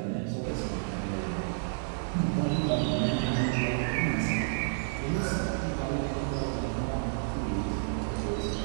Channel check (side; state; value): left; silent; 56 dB below the other